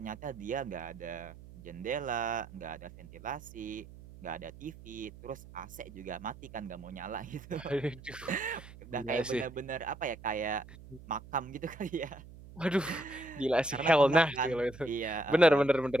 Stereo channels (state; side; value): noise; right; hum, 17 dB below the sound